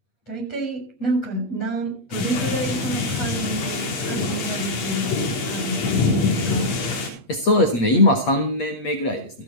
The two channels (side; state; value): right; late; 8.5 ms